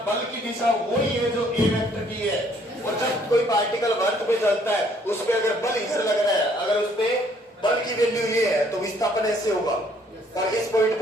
बल की दिशा वही है जो ए वेक्टर की है? और जब कोई पार्टिकल वर्क पे चलता है, उस पे अगर बल इसे लग रहा है, अगर उस पे बल की वैल्यू ये है, तो विस्थापन ऐसे होगा, और इस पॉइंट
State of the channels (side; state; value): both; normal; correlation 0.63